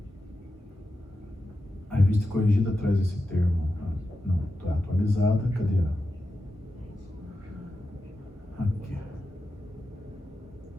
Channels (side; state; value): both; normal; correlation 0.90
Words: A revista Corrigida traz esse termo. Não, está atualizada. Cadê a? Aqui.